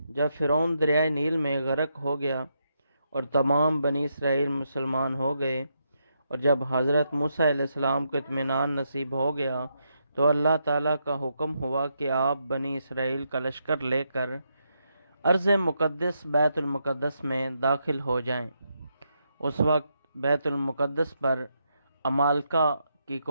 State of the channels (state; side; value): inverted; both; correlation -0.81